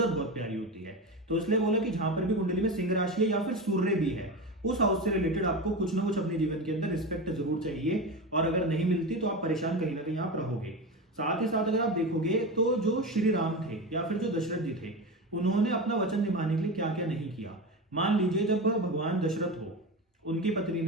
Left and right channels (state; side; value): normal; both; correlation 0.22